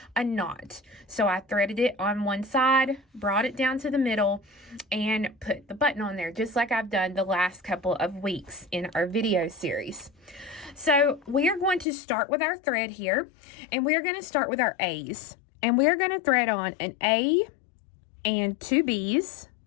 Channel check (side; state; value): right; drops out; at 11.9 s